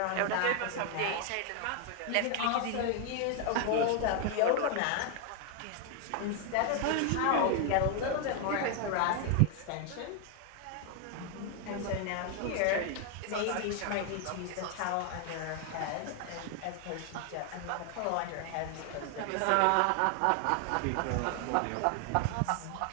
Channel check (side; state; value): both; different; correlation 0.00